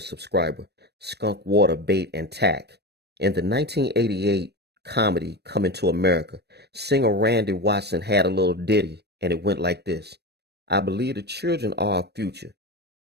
subscriber, Skunk Water Bait and Tack. In the 1988 comedy Coming to America, singer Randy Watson had a little ditty, and it went like this. I believe the children are our future.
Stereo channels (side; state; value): left; late; 0.48 ms